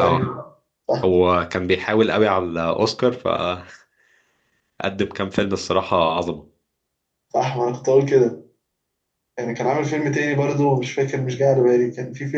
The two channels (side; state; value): both; identical; correlation 1.00